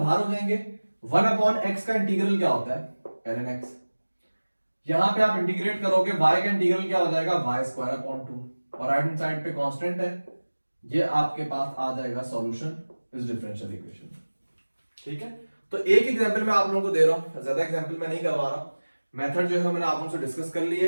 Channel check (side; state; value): both; inverted; correlation -1.00